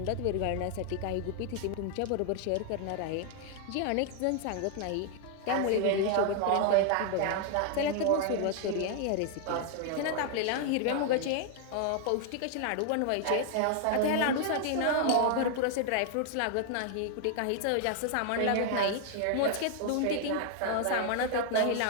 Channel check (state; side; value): different; both; correlation 0.00